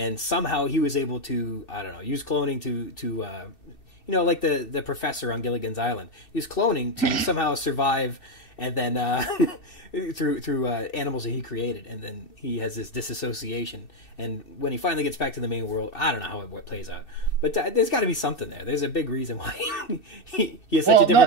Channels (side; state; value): right; late; 2.7 ms